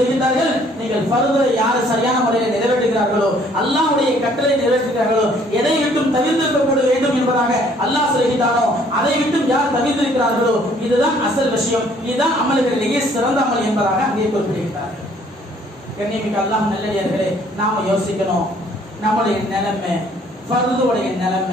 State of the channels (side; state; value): both; normal; correlation 0.60